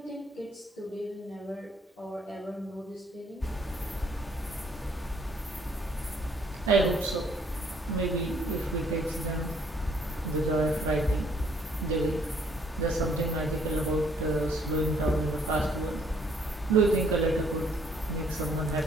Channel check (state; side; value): normal; both; correlation 0.64